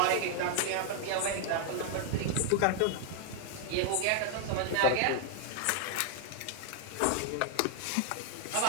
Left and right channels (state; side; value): different; both; correlation 0.00